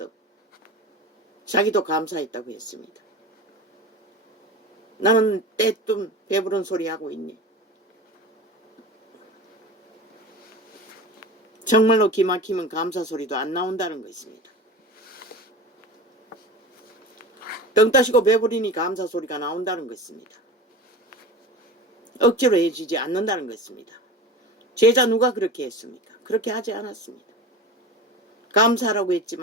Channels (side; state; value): both; normal; correlation 0.33